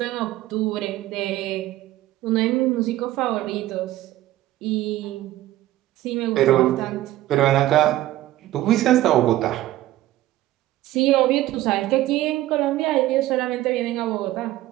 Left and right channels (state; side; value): quieter; left; 15.2 dB